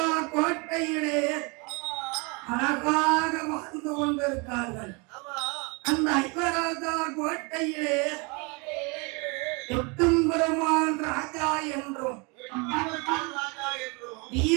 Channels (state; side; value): quieter; left; 30.3 dB